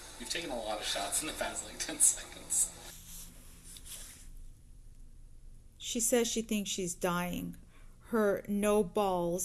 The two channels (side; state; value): both; identical; correlation 1.00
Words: You've taken a lot of shots in the past, like, 10 seconds. She says she thinks she's dying. Her no